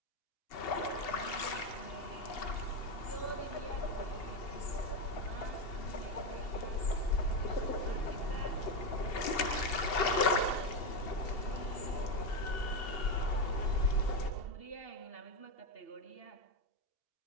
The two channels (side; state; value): right; late; 2.7 ms